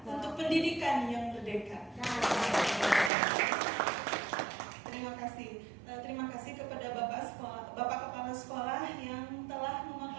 untuk pendidikan yang merdeka. Terima kasih kepada Bapak Kepala Sekolah yang telah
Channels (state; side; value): drops out; left; at 3.1 s